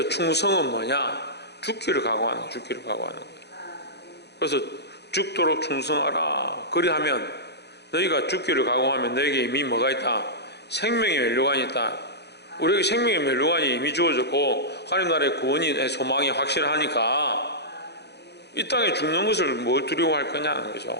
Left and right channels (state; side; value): late; right; 0.49 ms